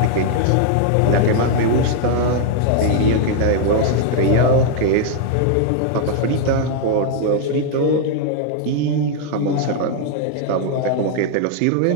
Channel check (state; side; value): different; both; correlation 0.00